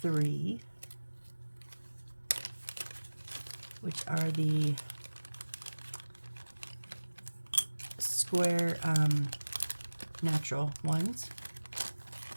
which are the square natural ones.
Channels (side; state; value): both; inverted; correlation -1.00